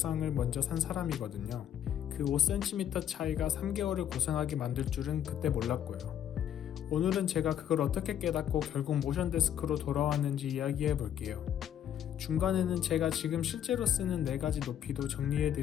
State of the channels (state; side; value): quieter; right; 10.0 dB